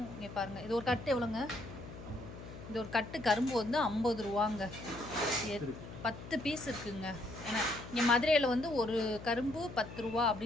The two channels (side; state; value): left; noise; hum, 13 dB below the sound